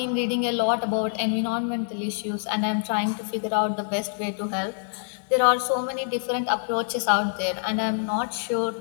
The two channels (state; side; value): silent; right; digital silence